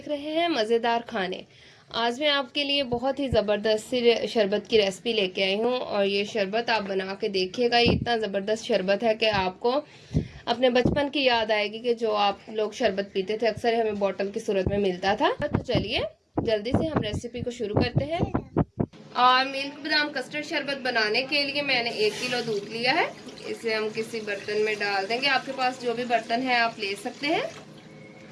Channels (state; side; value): identical; both; correlation 1.00